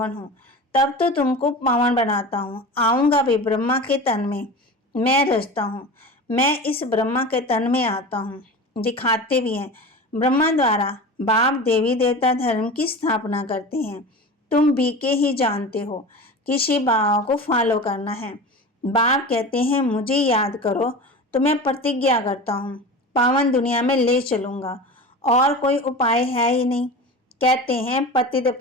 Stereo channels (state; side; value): normal; both; correlation 0.32